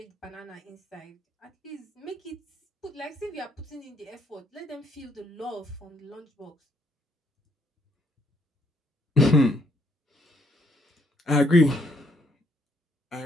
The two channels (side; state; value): both; normal; correlation 0.70